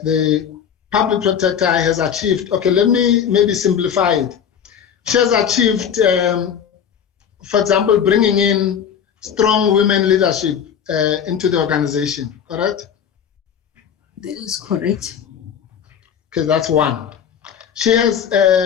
public protector has achieved, okay, let me maybe simplify it. She has achieved, for example, bringing in strong women leadership into the organization, correct? That is correct. Okay, that's one. She has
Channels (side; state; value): right; quieter; 8.1 dB